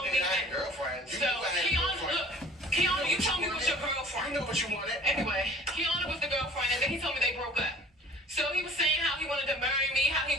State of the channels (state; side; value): normal; both; correlation 0.48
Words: me that. Girlfriend. So Kiana, look, Kiana, you told me it was your girlfriend. You know what you wanted. Anyway, Kiana was the girlfriend, and then he told me they broke up. So he was saying how he wanted to marry me, how he